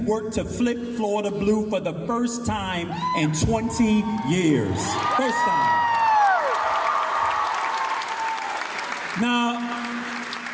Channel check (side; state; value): both; identical; correlation 1.00